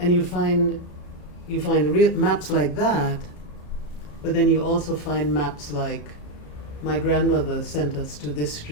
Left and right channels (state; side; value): late; right; 34 ms